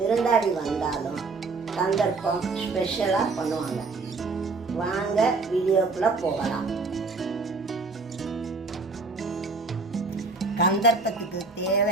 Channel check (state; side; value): quieter; left; 3.9 dB